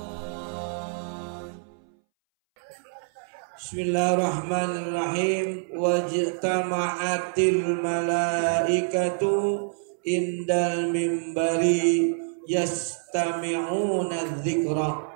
Bismillahirrahmanirrahim. Wajtama'atil malaikatu indal mimbari yastami'una dzikra.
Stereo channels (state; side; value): silent; left; 61 dB below the other